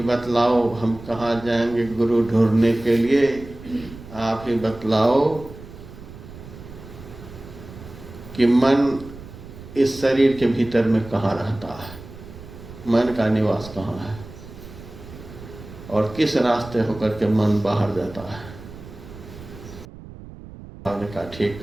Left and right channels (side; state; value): right; noise; rumble, 16 dB below the sound